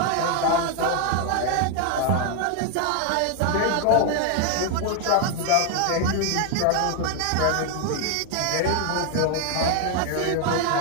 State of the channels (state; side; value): different; both; correlation 0.00